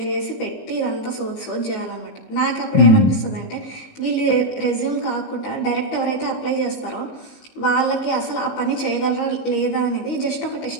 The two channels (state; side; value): late; right; 19 ms